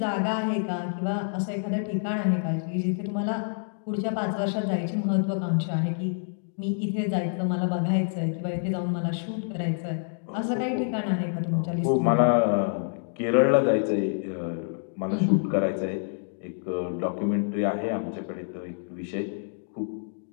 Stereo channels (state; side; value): silent; right; digital silence